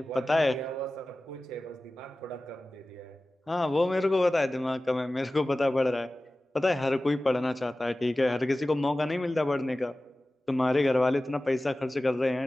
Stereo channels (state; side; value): normal; both; correlation 0.96